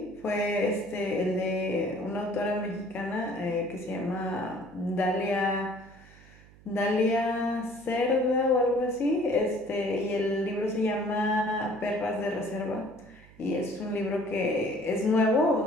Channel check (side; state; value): right; noise; hum, 24 dB below the sound